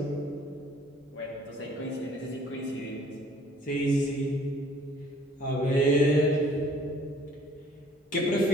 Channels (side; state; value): both; normal; correlation 0.56